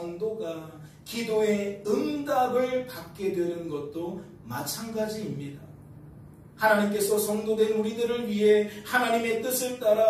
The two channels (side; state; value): both; identical; correlation 1.00